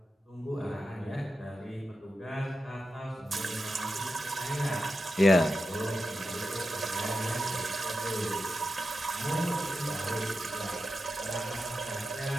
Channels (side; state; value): both; normal; correlation 0.90